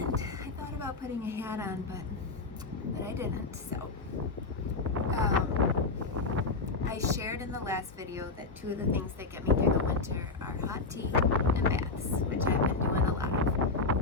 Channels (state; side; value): quieter; right; 3.7 dB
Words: I thought about putting a hat on, but I didn't. So, I shared in the last video that two of the things that get me through the winter are hot tea and baths, which I've been doing a lot of.